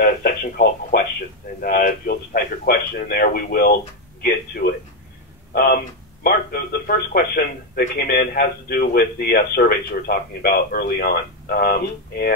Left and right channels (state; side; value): normal; both; correlation 0.05